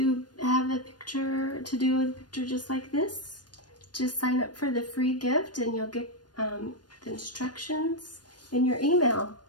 have a picture, to do a picture just like this, just sign up for the free gift and you'll get the instructions in your email.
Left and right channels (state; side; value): late; right; 0.69 ms